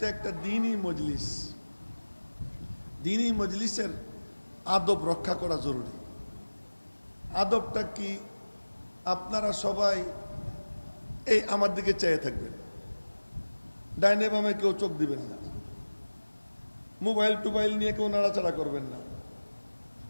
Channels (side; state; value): both; inverted; correlation -1.00